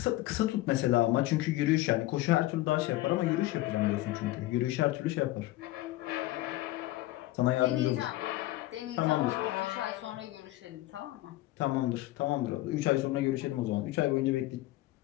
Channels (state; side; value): quieter; right; 17.2 dB